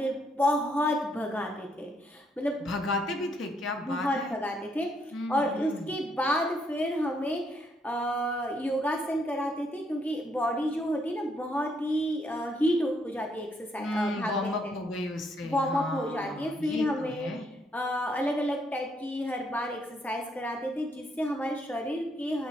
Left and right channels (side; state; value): both; normal; correlation 0.73